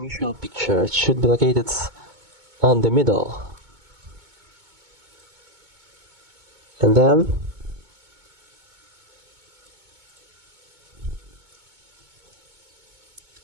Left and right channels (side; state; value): left; late; 2.2 ms